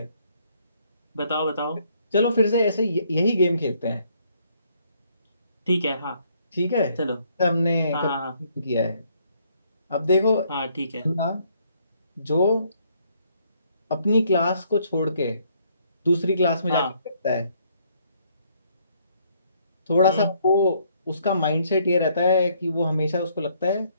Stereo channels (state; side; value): inverted; both; correlation -0.68